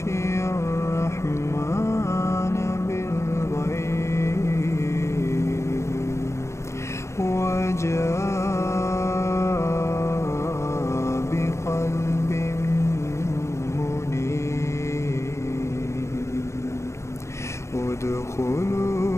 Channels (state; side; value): late; right; 0.14 ms